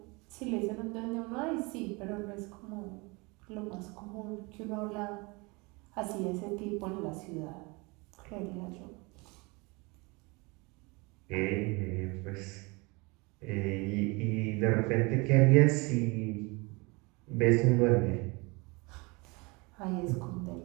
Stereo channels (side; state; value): left; quieter; 27.0 dB